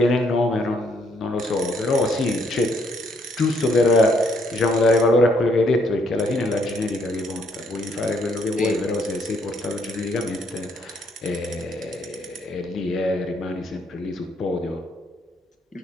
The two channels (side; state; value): both; normal; correlation 0.70